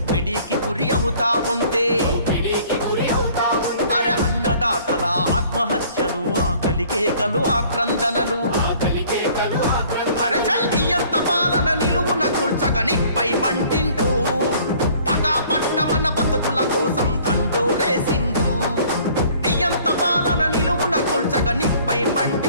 గురి అవుతా ఉంటే, అరే అన్నదాతల ఆత్మహత్యలు, ఆకలి కేకలు, ఆక్రందనలు, అరే చల్లియంత పాలన నిలువున కూల్చగనిపై మంటింటూ పగా పట్టమన్న బతుకుల కోసం దండోరేసిండు. నియంత పాలన నిలువున కూల్చగనిపై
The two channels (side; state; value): both; inverted; correlation -0.55